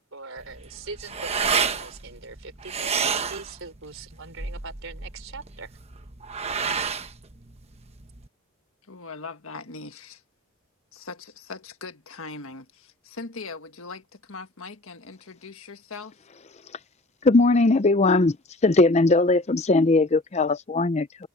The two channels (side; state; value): both; normal; correlation 0.39